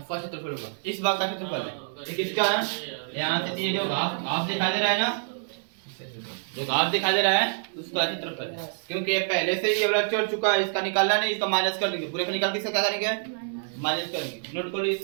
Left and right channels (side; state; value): left; silent; 60 dB below the other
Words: क्षेत्रफल होगा इस भाग का क्षेत्रफल है ये किसका है यहाँ से ये जो घास दिखाई दे रहा है ना जो घास दिखाई दे रहा है उसका क्षेत्रफल है क्योंकि ये पहले से ही ये वाला चढ़ चुका है इसका निकालना नहीं इसका माइनस कर देंगे पूरे का निकाल के इसका क्या करेंगे माइनस करेंगे नोट कर लो